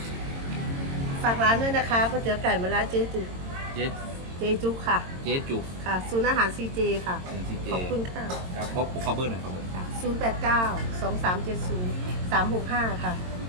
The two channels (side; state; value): left; late; 22 ms